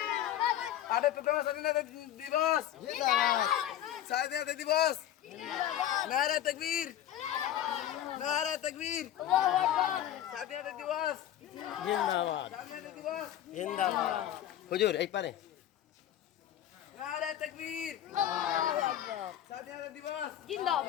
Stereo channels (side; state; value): right; quieter; 11.8 dB